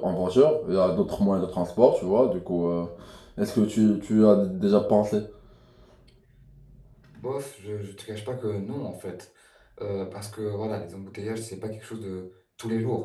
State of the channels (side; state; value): both; identical; correlation 1.00